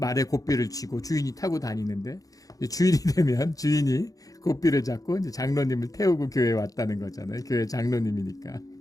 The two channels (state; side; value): late; right; 0.17 ms